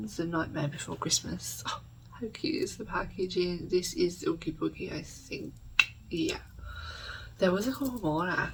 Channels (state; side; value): identical; both; correlation 1.00